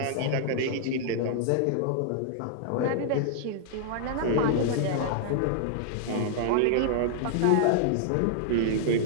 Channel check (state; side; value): different; both; correlation -0.01